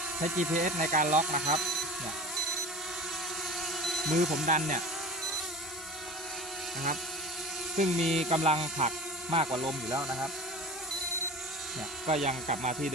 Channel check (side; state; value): both; normal; correlation 0.35